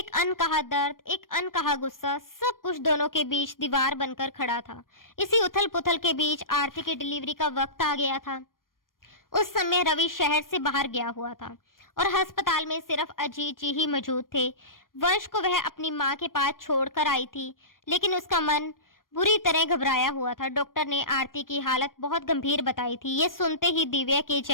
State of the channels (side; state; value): right; late; 0.91 ms